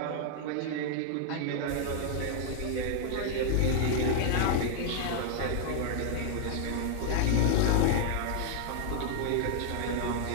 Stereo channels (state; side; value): different; both; correlation 0.00